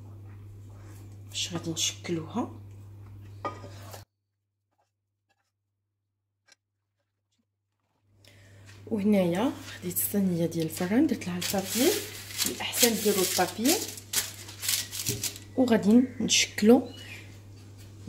باش غادي نشكلوها. وهنايا خديت الصينيه ديال الفران درت لها البابي، الاحسن ديروا البابي، وغادي نشكلو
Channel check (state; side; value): identical; both; correlation 1.00